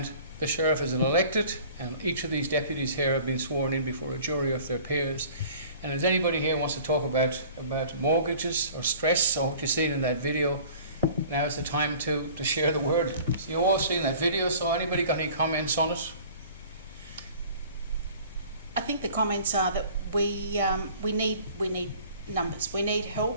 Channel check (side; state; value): both; inverted; correlation -0.48